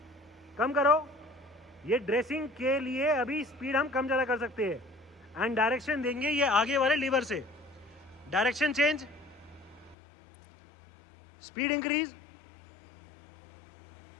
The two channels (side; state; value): right; drops out; at 10.0 s